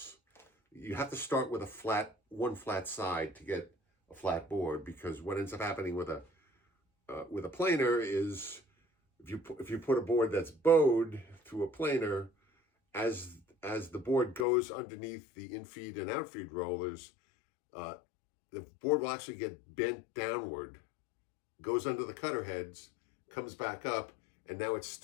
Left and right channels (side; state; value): right; drops out; at 14.5 s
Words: You have to start with one flat side to get a flat board, because what ends up happening with a planer is if you put a board that's bowed through a planer, as the board goes underneath the infeed and outfeed rollers, the board will actually get bent downward, goes under the cutter heads, comes back up, and now it's